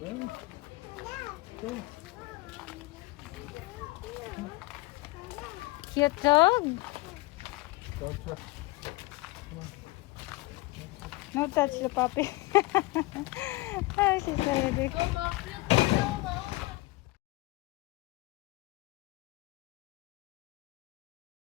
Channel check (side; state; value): right; quieter; 21.4 dB